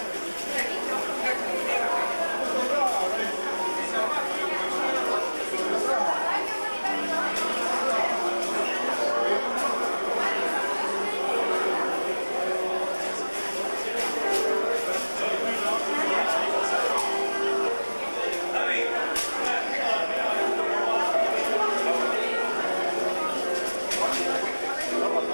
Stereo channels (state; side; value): inverted; both; correlation -1.00